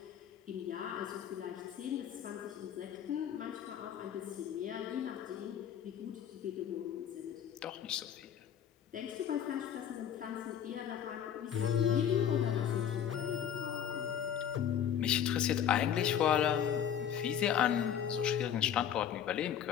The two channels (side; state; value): right; quieter; 9.1 dB